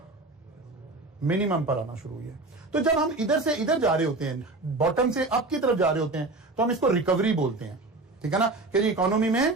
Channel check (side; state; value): left; quieter; 3.2 dB